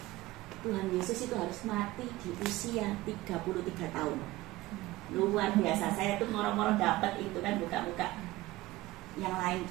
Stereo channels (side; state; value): left; quieter; 18.3 dB